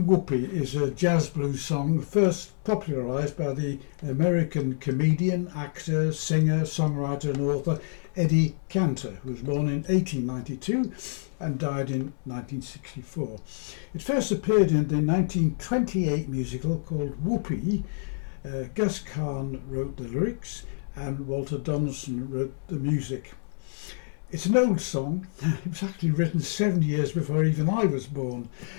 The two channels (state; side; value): silent; right; digital silence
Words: Whoopee is a jazz blues song first popularised by the American comedian, actor, singer, songwriter and author Eddie Cantor, who was born in 1892 and died in 1964. It first appeared in the 1928 musical called Whoopee. Gus Kahn wrote the lyrics and Walter Donaldson wrote the music. It's an old song. It was actually written 7 years before even I was born,